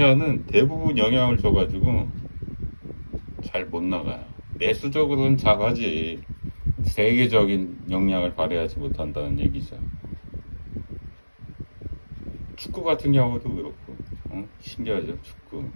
대부분 영향을 줘가지고 잘 못 나가요. 내수적으로는 잘하지 세계적인 역량을 발휘하지 못한다는 얘기죠. 축구 같은 경우도 그렇고 신기하죠. 축구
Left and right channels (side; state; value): both; inverted; correlation -1.00